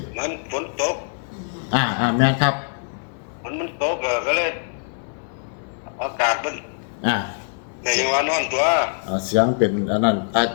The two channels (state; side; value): silent; right; digital silence